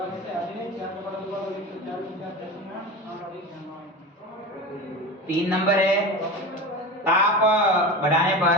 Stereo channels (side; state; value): both; normal; correlation 0.28